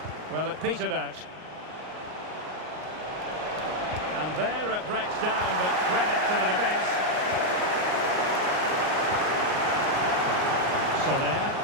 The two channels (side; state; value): left; late; 38 ms